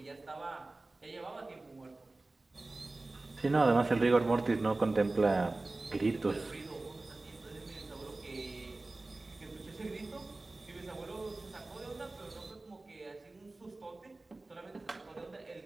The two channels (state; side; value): quieter; left; 3.1 dB